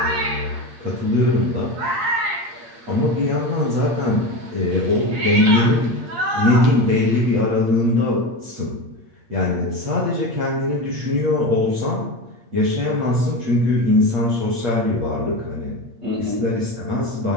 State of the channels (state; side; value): late; left; 8.7 ms